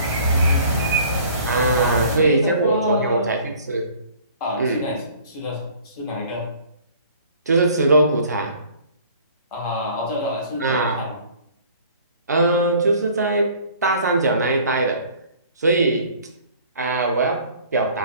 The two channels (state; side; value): inverted; both; correlation -0.52